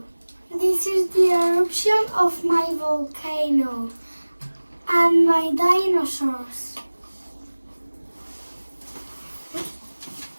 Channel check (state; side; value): inverted; both; correlation -1.00